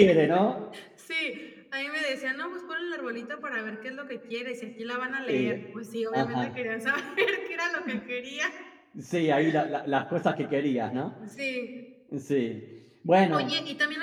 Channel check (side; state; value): both; identical; correlation 1.00